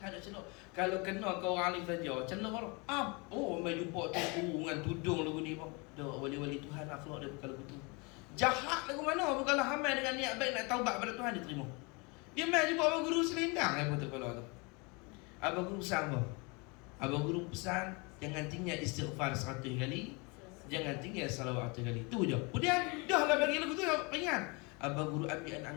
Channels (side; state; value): right; quieter; 29.4 dB